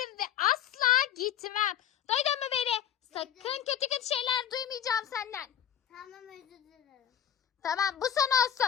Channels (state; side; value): quieter; right; 9.7 dB